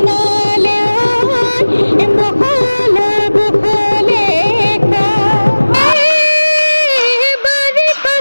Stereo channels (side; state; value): both; inverted; correlation -1.00